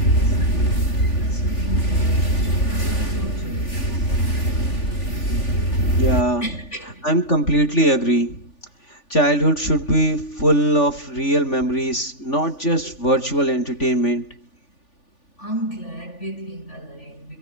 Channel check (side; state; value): right; late; 3.4 ms